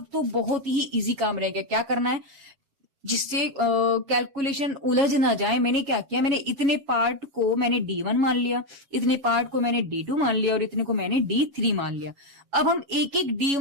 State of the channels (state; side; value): late; left; 7.2 ms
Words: तो बहुत ही इजी काम रह गया, क्या करना है जिससे कैलकुलेशन उलझ ना जाए। मैंने क्या किया, मैंने इतने पार्ट को मैंने D1 मान लिया, इतने पार्ट को मैंने D2 मान लिया और इतने को मैंने D3 मान लिया। अब हम एक एक